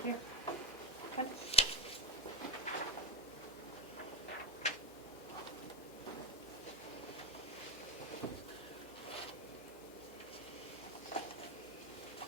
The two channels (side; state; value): both; normal; correlation 0.13